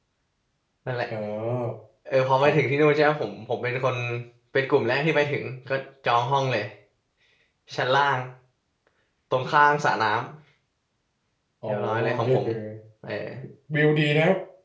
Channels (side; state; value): both; identical; correlation 1.00